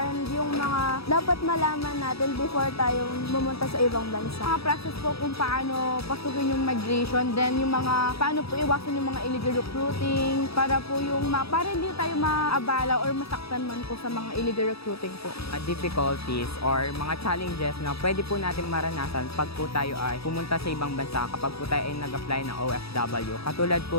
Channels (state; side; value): late; right; 0.77 ms